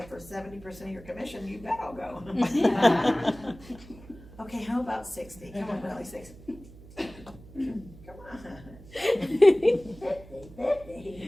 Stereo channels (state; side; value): noise; right; hum, 19 dB below the sound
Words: for 70% of your commission, you bet I'll go. Okay, how about 60? Come on, really, 60. Come on. 50.